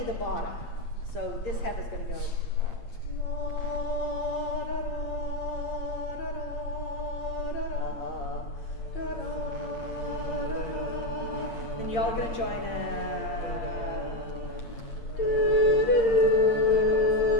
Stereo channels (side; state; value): right; late; 8.7 ms